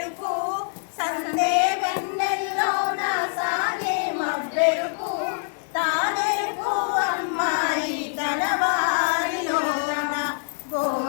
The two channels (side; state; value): right; silent; digital silence